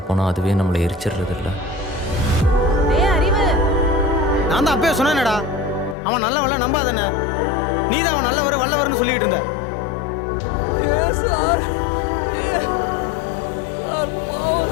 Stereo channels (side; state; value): right; drops out; at 6.0 s